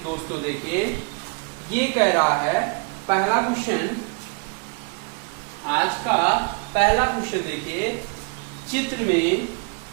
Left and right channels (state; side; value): quieter; left; 33.7 dB